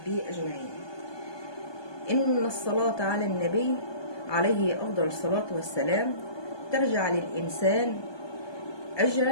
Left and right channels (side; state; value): right; late; 1.2 ms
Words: أجمعين. إن الصلاة على النبي عليه أفضل الصلاة والسلام ترجع للإنسان